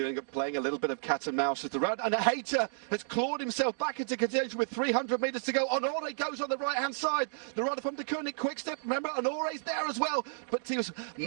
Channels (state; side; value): silent; left; digital silence